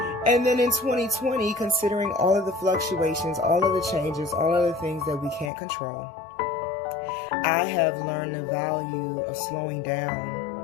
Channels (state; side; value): drops out; right; at 5.5 s